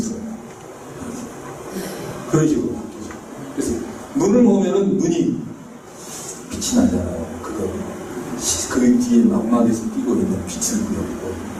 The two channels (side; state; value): both; identical; correlation 1.00